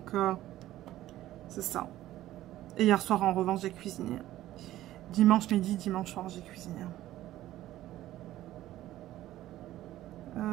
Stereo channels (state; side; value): quieter; left; 14.4 dB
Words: c'est ça. Et hier soir, en revanche, j'ai cuisiné. Dimanche midi, dimanche soir, j'ai cuisiné.